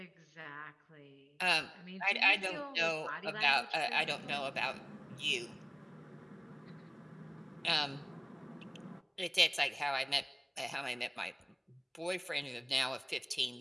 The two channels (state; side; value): identical; both; correlation 1.00